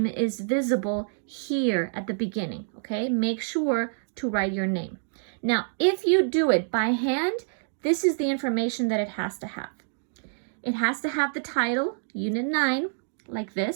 is visible here at the beginning, okay? Make sure to write your name. Now, if you do it by hand, this is the information that it has to have. It has to have the title, Unit 9, like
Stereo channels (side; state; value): left; silent; digital silence